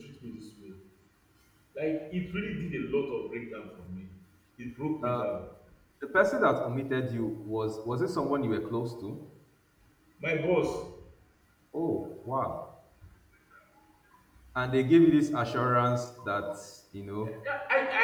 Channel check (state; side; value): identical; both; correlation 1.00